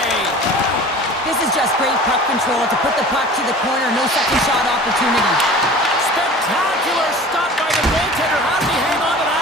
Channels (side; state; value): both; normal; correlation 0.41